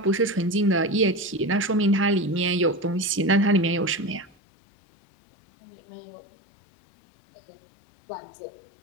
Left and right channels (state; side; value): drops out; right; at 4.4 s